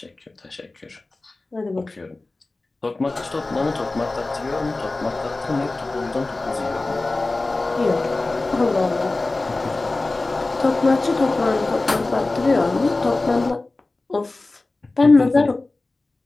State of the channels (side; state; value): right; quieter; 3.2 dB